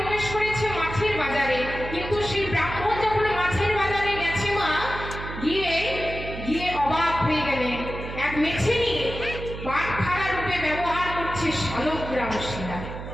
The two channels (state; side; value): noise; right; hum, 9 dB below the sound